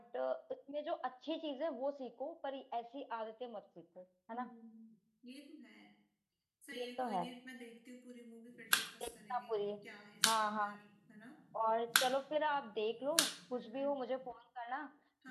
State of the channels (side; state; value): both; identical; correlation 1.00